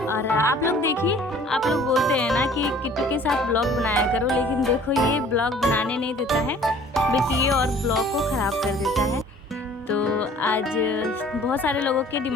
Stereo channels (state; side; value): normal; both; correlation 0.52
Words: और आप लोग देखिए, आप लोग बोलते हैं ना कि किट्टू के साथ ब्लॉग बनाया करो, लेकिन देखो ये ब्लॉग बनाने नहीं देता है बल्कि ये और ब्लॉग को ख़राब कर देता है। तो आज बहुत सारे लोगों के